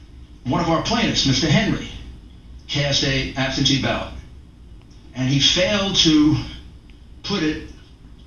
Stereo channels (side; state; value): both; identical; correlation 1.00